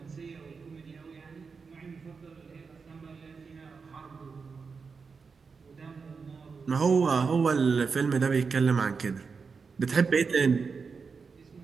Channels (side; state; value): left; quieter; 5.2 dB